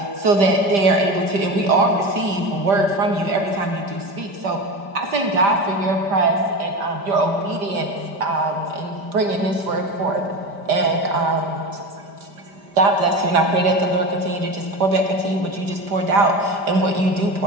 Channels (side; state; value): left; late; 5.0 ms